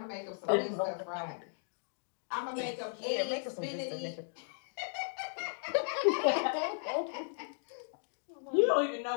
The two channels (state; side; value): silent; right; digital silence